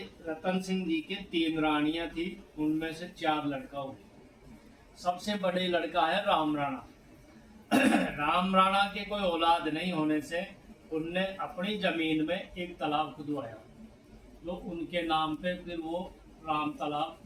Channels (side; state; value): both; identical; correlation 1.00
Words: रतन सिंह जी के 3 रानियां थी, उनमें से 4 लड़का हुए। सबसे बड़े लड़का है राम राणा। राम राणा के कोई औलाद नहीं होने से उनने अपनी जमीन में एक तालाब खुदवाया जो उनके नाम पे फिर वो राम